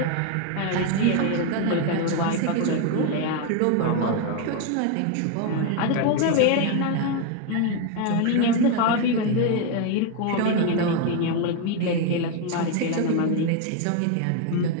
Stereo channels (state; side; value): different; both; correlation 0.01